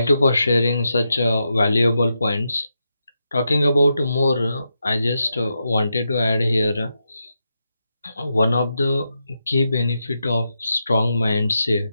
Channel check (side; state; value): both; inverted; correlation -0.86